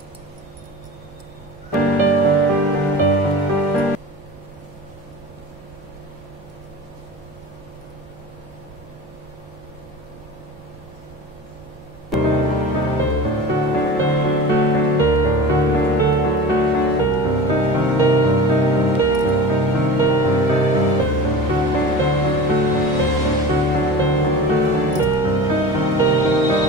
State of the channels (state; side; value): normal; both; correlation 0.34